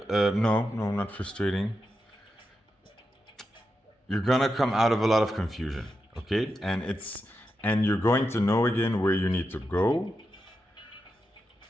not frustrating. You're gonna come out of a lot of confusion, okay? And you're going to know again where you need to go.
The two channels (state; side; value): normal; both; correlation 0.88